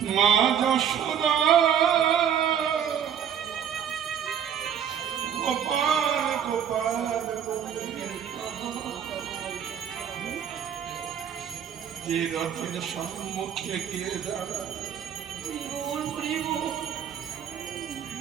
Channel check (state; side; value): quieter; left; 8.6 dB